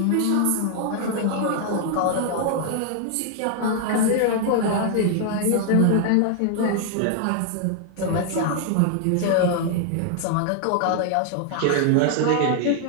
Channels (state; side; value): different; both; correlation 0.00